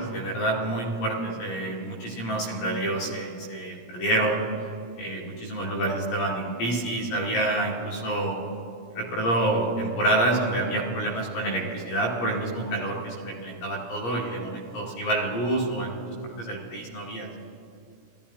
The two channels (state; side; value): late; right; 17 ms